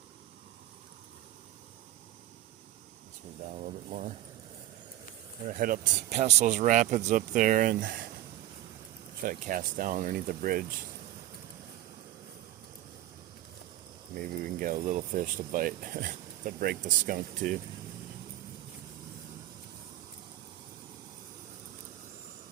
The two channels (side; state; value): left; quieter; 14.4 dB